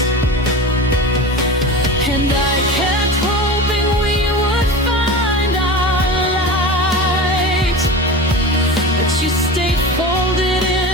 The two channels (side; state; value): both; normal; correlation 0.30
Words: And I kept hoping we would find our light, but you stayed folded